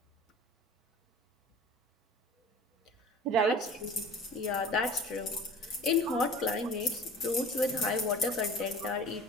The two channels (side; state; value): both; normal; correlation 0.41